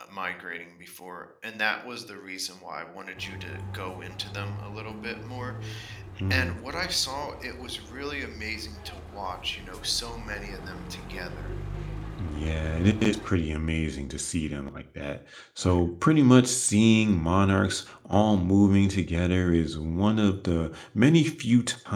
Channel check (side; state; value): both; identical; correlation 1.00